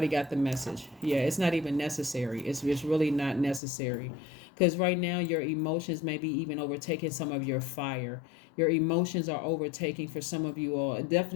got the message. Yeah, it's not even necessary. It's really not necessary. Because right now, your emotions may be even overtaking some of your fire. Your emotions are overtaking for some of you all.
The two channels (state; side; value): drops out; right; at 3.6 s